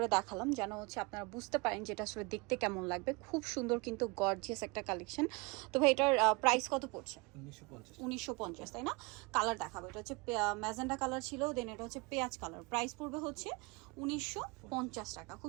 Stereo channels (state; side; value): quieter; left; 27.7 dB